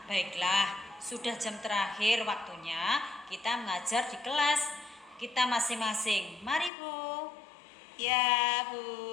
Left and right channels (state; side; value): drops out; right; at 6.7 s